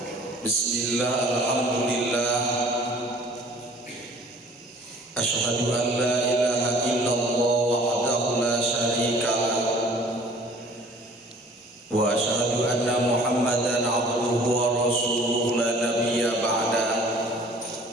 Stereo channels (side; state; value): both; normal; correlation 0.51